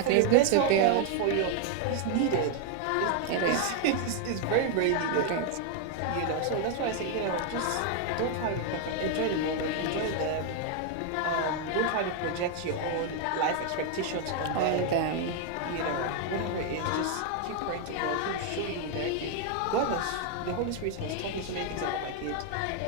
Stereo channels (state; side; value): different; both; correlation 0.00